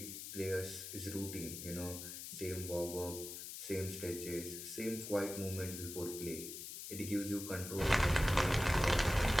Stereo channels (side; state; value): left; noise; hiss, 8 dB below the sound